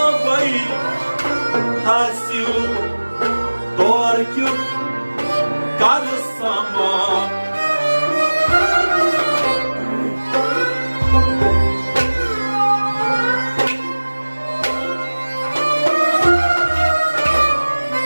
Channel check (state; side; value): inverted; both; correlation -1.00